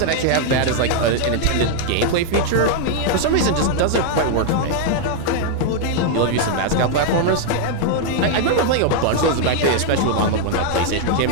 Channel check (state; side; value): different; both; correlation 0.00